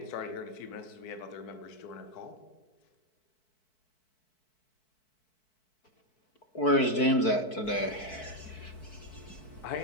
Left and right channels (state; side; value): late; right; 4.6 ms